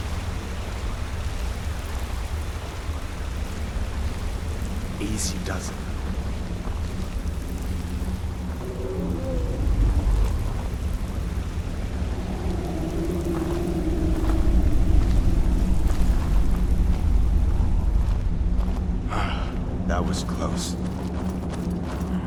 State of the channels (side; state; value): both; identical; correlation 1.00